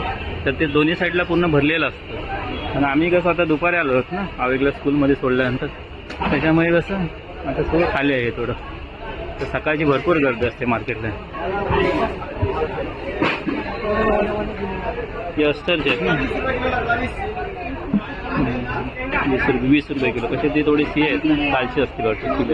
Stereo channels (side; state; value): both; identical; correlation 1.00